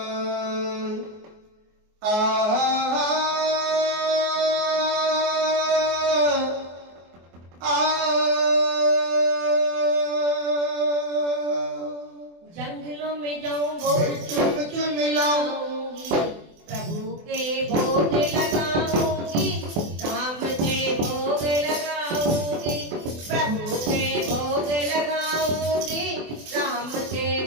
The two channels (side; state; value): left; late; 24 ms